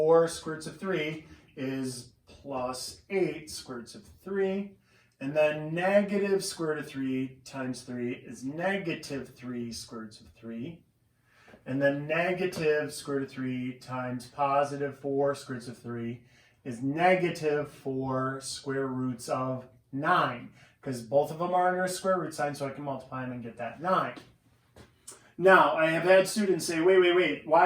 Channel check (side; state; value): both; identical; correlation 1.00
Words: square roots of 3 is plus 8 square roots of 3. And then negative square root of 3 times 3 is negative 3 square roots of 3. And then negative square root of 3 times positive 4 square roots of 3 is negative 4 square roots of 9. Because both of them are under a square root sign, so I can multiply them and get that 9. Now, I have had students say, wait,